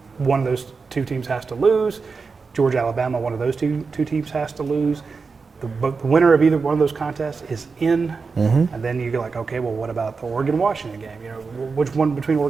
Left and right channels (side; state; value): left; quieter; 4.7 dB